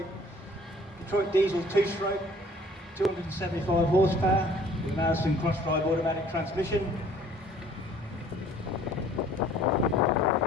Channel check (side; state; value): both; normal; correlation 0.55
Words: diesel 2-stroke, 275 horsepower, with Musuem cross-drive automatic transmission.